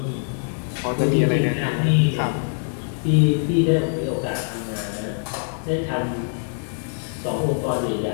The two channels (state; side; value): silent; right; digital silence